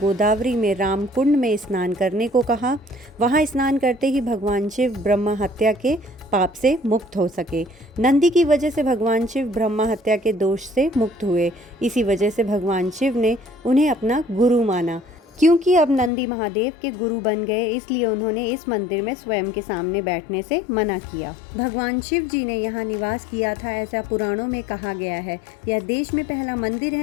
में राम कुंड में स्नान करने को कहा। वहां स्नान करते ही भगवान शिव ब्रह्म हत्या के पाप से मुक्त हो सके। नंदी की वजह से भगवान शिव ब्रह्म हत्या के दोष से मुक्त हुए। इसी वजह से भगवान शिव ने उन्हें अपना गुरु माना। क्योंकि अब नंदी महादेव के गुरु बन गए, इसलिए उन्होंने इस मंदिर में स्वयं के सामने बैठने से मना किया। भगवान शिव जी ने यहाँ निवास किया था, ऐसा पुराणों में कहा गया है। यह देश में पहला मंदिर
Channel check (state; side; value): drops out; right; at 16.1 s